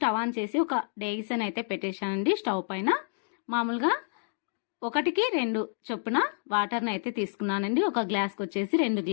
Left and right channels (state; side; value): silent; right; digital silence